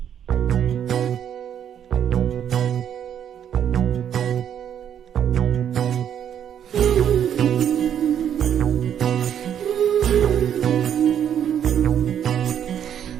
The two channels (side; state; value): left; quieter; 9.3 dB